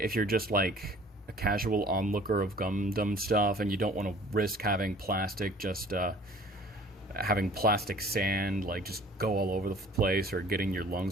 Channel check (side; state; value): both; normal; correlation 0.50